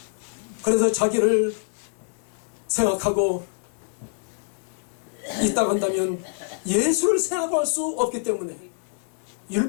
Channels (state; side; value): silent; right; 61 dB below the other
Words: 그래서 자기를 생각하고 있다고 한다면 예수를 생각할 수 없기 때문에